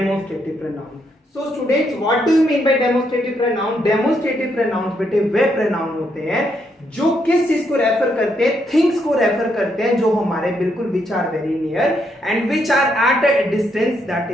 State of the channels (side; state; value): both; normal; correlation 0.76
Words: pronoun. So students, what do you mean by demonstrative pronoun? Demonstrative pronouns बेटे वे pronoun होते हैं जो किस चीज को refer करते हैं, things को रेफर करते हैं जो हमारे बिल्कुल which are very near and which are at a distance, that